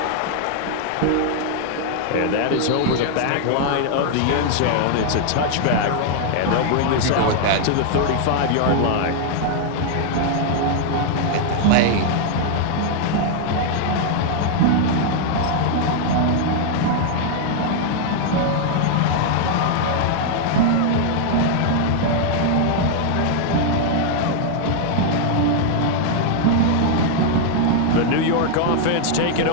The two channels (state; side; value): different; both; correlation 0.00